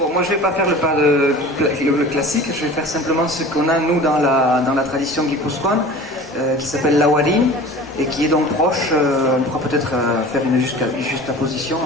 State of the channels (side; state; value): both; normal; correlation 0.40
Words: moi je ne vais pas faire le classique, je vais faire simplement ce qu'on a nous dans la tradition guipuscoane, qui s'appelle l'awari, et qui est donc proche, on pourra peut-être faire une juxtaposition,